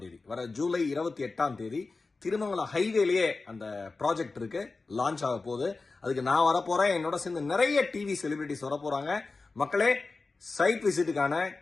தேதி, வர ஜூலை 28ஆம் தேதி திருமங்கலம் ஹைவேலயே அந்த ப்ராஜெக்ட் இருக்கு, லான்ச் ஆக போகுது. அதுக்கு நான் வரப்போறேன், என்னோட சேர்ந்து நிறைய டிவி செலிபிரிட்டிஸ் வர போறாங்க. மக்களே, சைட் விசிட்டுக்கான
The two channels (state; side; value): quieter; right; 3.8 dB